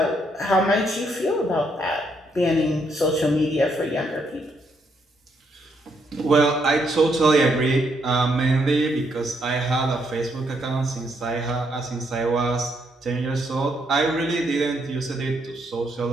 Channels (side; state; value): both; normal; correlation 0.75